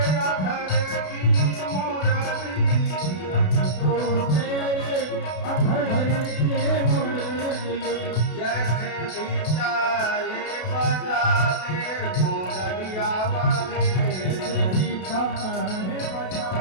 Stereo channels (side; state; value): right; late; 32 ms